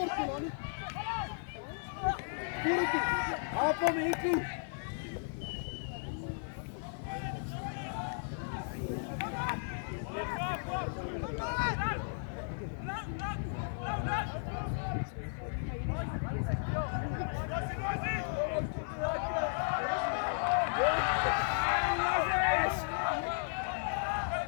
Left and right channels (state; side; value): silent; right; digital silence